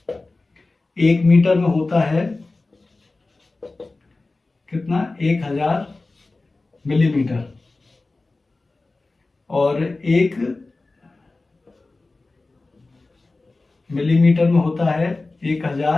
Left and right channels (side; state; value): right; quieter; 3.3 dB